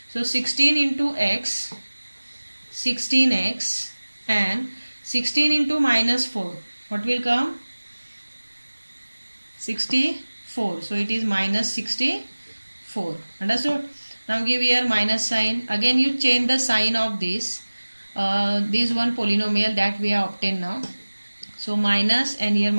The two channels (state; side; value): inverted; both; correlation -1.00